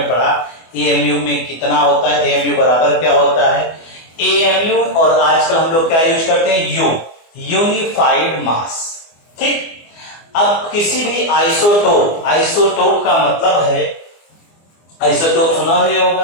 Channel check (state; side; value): late; right; 24 ms